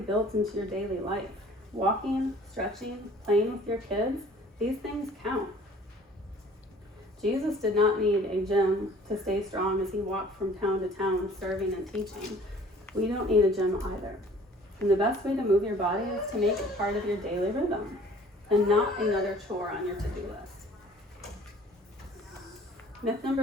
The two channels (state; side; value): normal; both; correlation 0.52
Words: into your daily life. Walking, stretching, playing with your kids, these things count. Jesus did not need a gym to stay strong as he walked from town to town serving and teaching. We don't need a gym either. And the best way to move your body is to make it part of your daily rhythm and not another chore on your to-do list. Myth